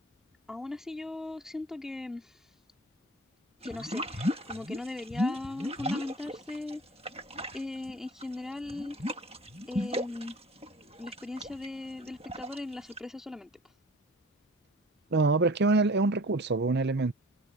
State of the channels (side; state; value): both; normal; correlation 0.43